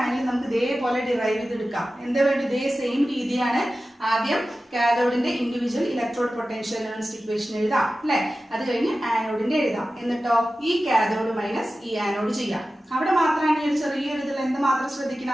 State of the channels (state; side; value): normal; both; correlation 0.95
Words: നമുക്ക് ഇതേപോലെ ഡിറൈവ് ചെയ്തെടുക്കാം. എന്താ വേണ്ടി? ഇതേ സെയിം രീതിയാണ്. ആദ്യം കാഥോഡിന്റെ ഇൻഡിവിജ്വൽ ഇലക്ട്രോഡ് പൊട്ടൻഷ്യൽ നെർസ്റ്റ് ഇക്വേഷൻ എഴുതാം അല്ലെ. അത് കഴിഞ്ഞ് ആനോഡിന്റെ എഴുതാം. എന്നിട്ടോ ഈ കാഥോഡ് മൈനസ് ഈ ആനോഡ് ചെയ്യാം. അവിടെ മാത്രമാണ് ഈ ഒരു ചെറിയൊരു ഇതിൽ എന്ത് മാത്രം